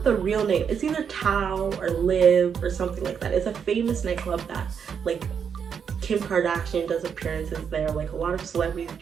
the real name. It's either Tao or Live or something like that. It's a famous nightclub that like Kim Kardashian does appearances there. Like a lot of celebrities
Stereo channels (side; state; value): left; quieter; 7.1 dB